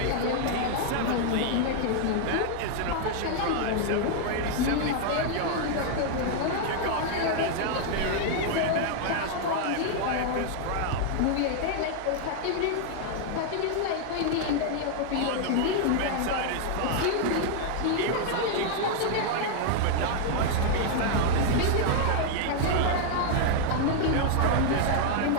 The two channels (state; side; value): different; both; correlation 0.00